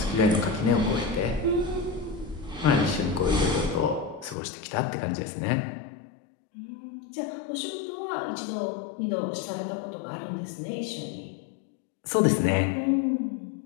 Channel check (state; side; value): drops out; right; at 4.4 s